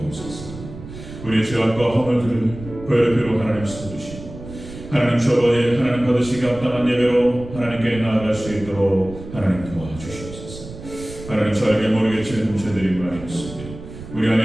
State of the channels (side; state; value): right; noise; rumble, 13 dB below the sound